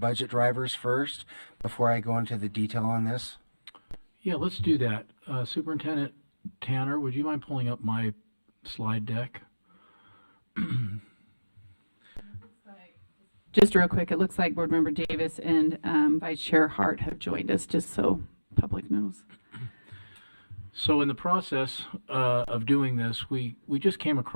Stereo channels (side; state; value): both; inverted; correlation -1.00